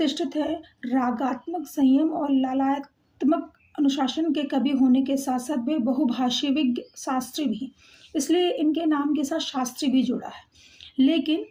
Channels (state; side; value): identical; both; correlation 1.00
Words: है। रागात्मक संयम और ललात्मक अनुशासन के कवि होने के साथ साथ वे बहुभाषी विज्ञ शास्त्री भी, इसलिए इनके नाम के साथ शास्त्री भी जुड़ा है। लेकिन